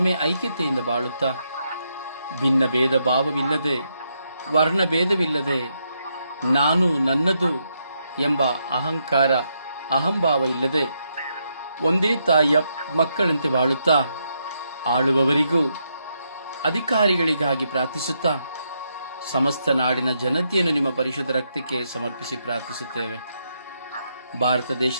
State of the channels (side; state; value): both; inverted; correlation -0.79